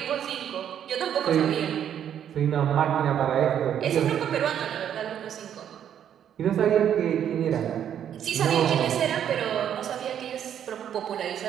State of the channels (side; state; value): left; quieter; 9.5 dB